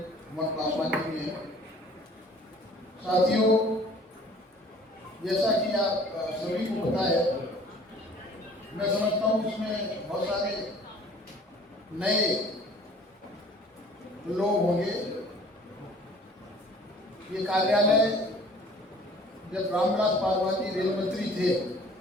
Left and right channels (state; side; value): normal; both; correlation 0.51